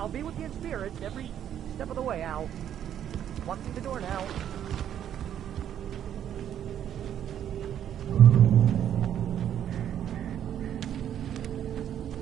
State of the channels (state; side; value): quieter; left; 10.0 dB